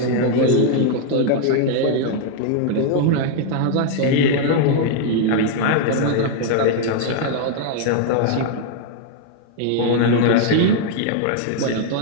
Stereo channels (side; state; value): both; different; correlation 0.00